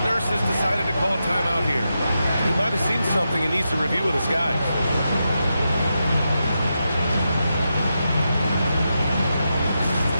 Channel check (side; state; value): both; inverted; correlation -0.87